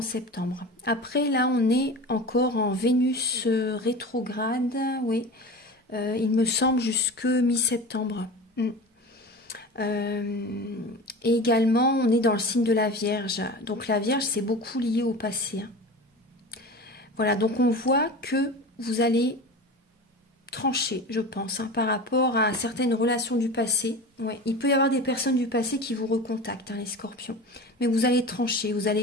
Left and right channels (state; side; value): normal; both; correlation 0.32